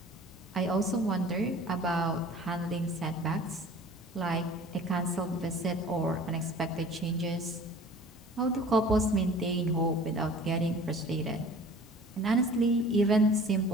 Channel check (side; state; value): both; normal; correlation 0.46